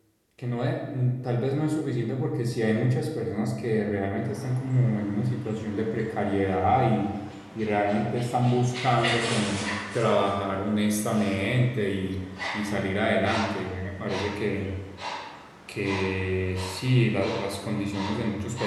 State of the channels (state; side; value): identical; both; correlation 1.00